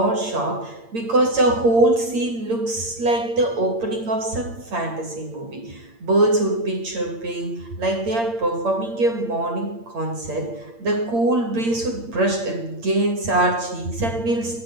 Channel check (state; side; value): late; left; 8.7 ms